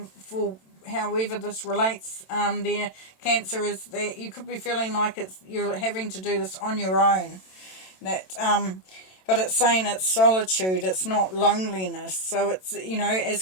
for however this relates, there, Cancer, is that you could be feeling like you're having to do this on your own. But it's saying it's solitude, it's not loneliness. So it's,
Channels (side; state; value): right; late; 27 ms